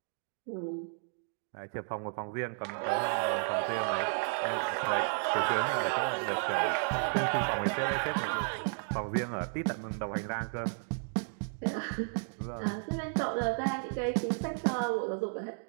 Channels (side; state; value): left; silent; 56 dB below the other